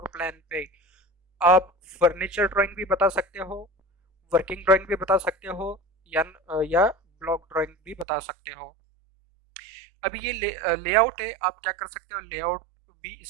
प्लान पे आप फर्नीचर ड्राइंग भी बता सकते हो, वर्किंग ड्राइंग भी बता सकते हो, या ब्लॉक ड्राइंग भी बता सकते हो। अभी ये लेआउट है, आप क्या कर सकते हो लेआउट भी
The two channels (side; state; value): left; drops out; at 8.1 s